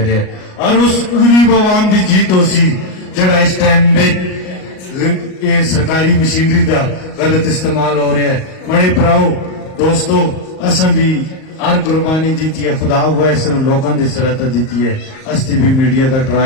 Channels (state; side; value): late; right; 38 ms